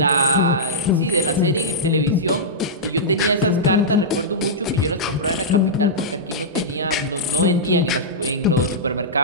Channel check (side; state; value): both; normal; correlation -0.12